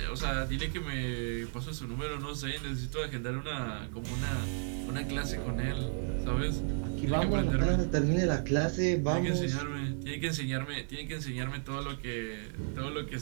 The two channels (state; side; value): silent; left; digital silence